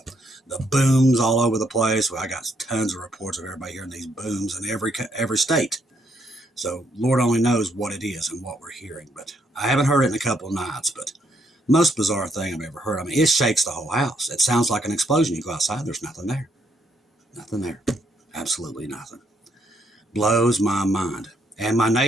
The booms all over the place. Well, I got tons of reports of everybody hearing these booms in every state. So Lord only knows what it is and what we're hearing. But I haven't heard it in a couple of nights. But most bizarre thing I've ever heard. I mean, it shakes the whole house. It sounds like an explosion. You go outside, there's nothing there. Nothing there. Absolutely nothing. Blows my mind. And my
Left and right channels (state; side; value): normal; both; correlation 0.73